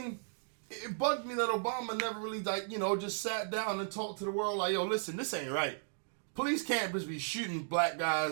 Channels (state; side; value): silent; left; digital silence